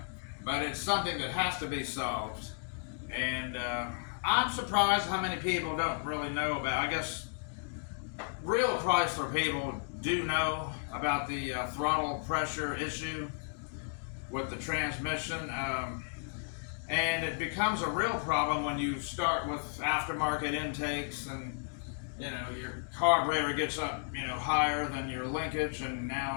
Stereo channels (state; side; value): silent; right; digital silence